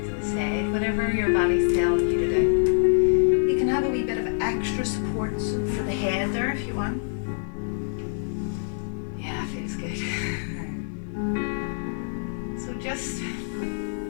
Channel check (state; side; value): silent; right; digital silence